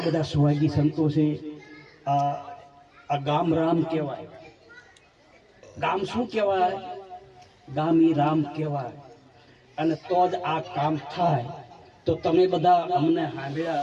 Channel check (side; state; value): both; identical; correlation 1.00